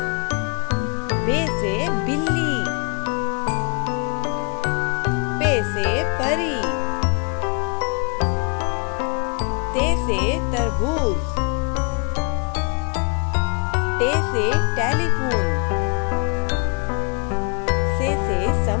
बे से बिल्ली, पे से परी, ते से तरबूज, टे से टेलीफोन, से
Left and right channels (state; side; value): quieter; right; 38.1 dB